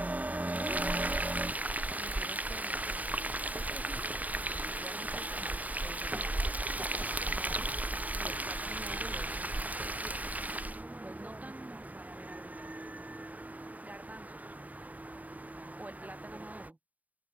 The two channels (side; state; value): left; late; 0.074 ms